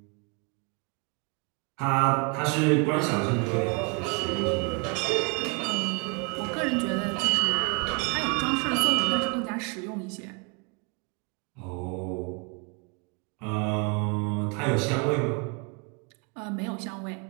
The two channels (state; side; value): quieter; left; 33.2 dB